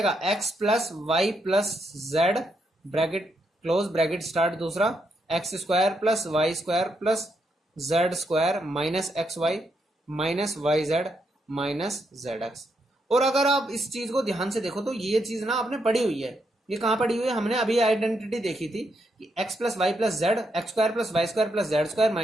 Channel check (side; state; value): both; normal; correlation 0.79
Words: x plus y plus z bracket close bracket start, दूसरा x square plus y square plus z square minus x y minus y z minus z x. और अगर आप इस चीज को ध्यान से देखो तो ये चीज ना आपने पढ़ी हुई है। ये कहाँ पढ़ी हुई है? हमने अभी आइडेंटिटी देखी थी कि x plus y plus z x square plus y square plus z square